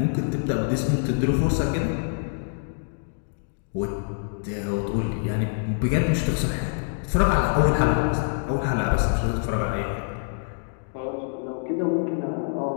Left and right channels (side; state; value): right; silent; digital silence